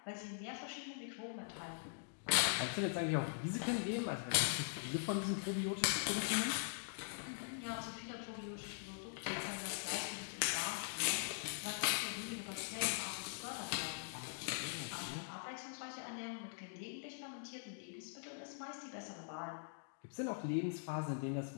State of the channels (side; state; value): right; silent; digital silence